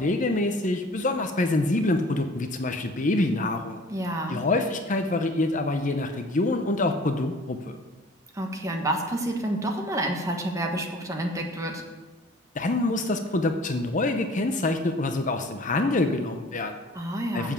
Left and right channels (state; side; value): normal; both; correlation 0.49